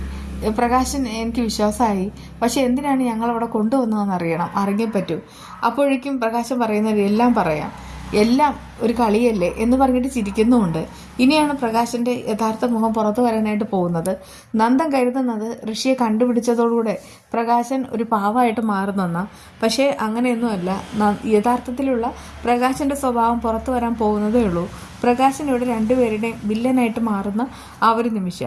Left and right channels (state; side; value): identical; both; correlation 1.00